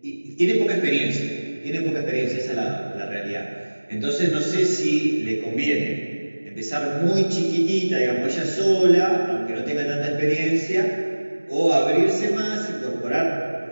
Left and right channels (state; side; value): inverted; both; correlation -1.00